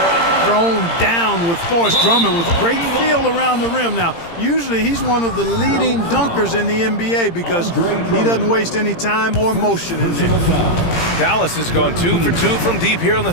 Thrown down with force. Drummond with great feel around the rim. Now, usually he's one of the leading dunkers in the NBA because he doesn't waste any time or motion in there. Dallas has gone 2 for 2 from deep here in the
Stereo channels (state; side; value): late; right; 17 ms